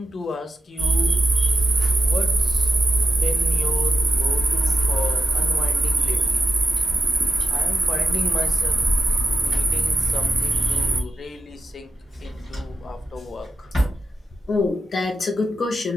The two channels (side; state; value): both; normal; correlation 0.90